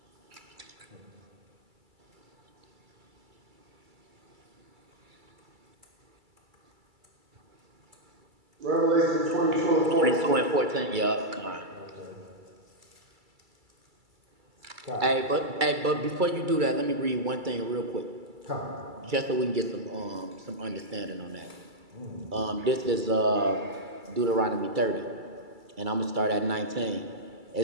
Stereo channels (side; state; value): left; late; 2.3 ms